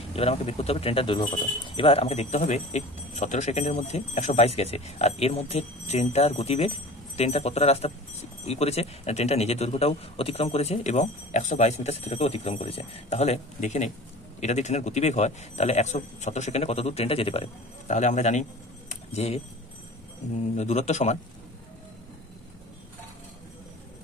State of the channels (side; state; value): both; normal; correlation 0.39